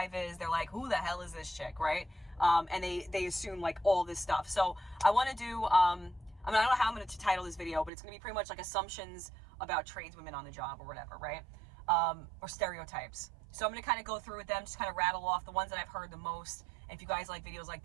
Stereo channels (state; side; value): drops out; left; at 7.9 s